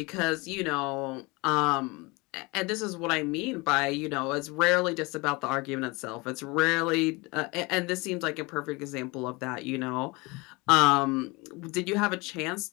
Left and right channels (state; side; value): quieter; right; 25.4 dB